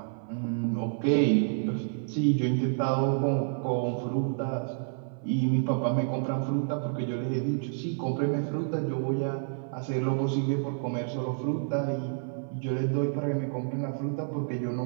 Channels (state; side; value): silent; left; 58 dB below the other